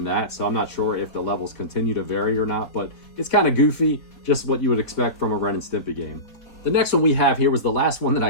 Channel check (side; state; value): right; late; 4.4 ms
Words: that, so I'm not sure if the levels continue to vary or not, but it's kind of goofy, just what you would expect from a Ren and Stimpy game. The next one we have here was the last one that I